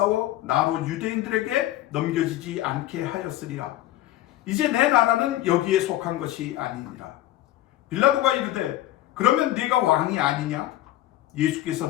나로 유대인들에게 넘겨지지 않게 하였으리라. 이제 내 나라는 여기에 속한 것이 아니니라. 빌라도가 이르되 그러면 네가 왕이 아니냐? 예수께서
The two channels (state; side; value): quieter; right; 14.5 dB